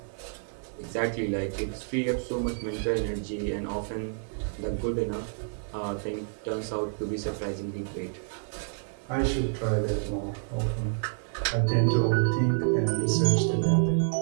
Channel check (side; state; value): left; silent; 59 dB below the other